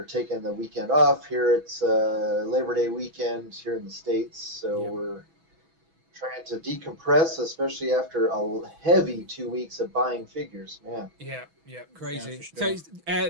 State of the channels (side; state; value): left; late; 6.1 ms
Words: taking the weekend off here. It's Labor Day weekend here in the States, so we're trying to decompress, especially after a heavy 2 weeks of buying figures, man. Yeah, crazy. Yeah, sure. So